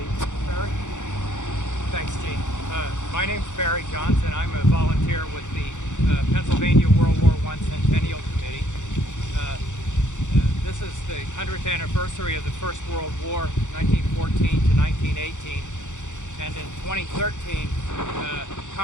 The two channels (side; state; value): right; late; 0.85 ms